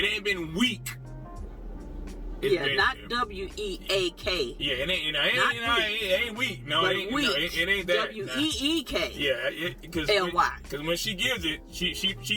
ain't been weak. Not W-E-A-K. Yeah, it ain't weak. No, it ain't that. W-E-E-K. Yeah, because L-Y. Because when she gives it, she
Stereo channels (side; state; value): both; identical; correlation 1.00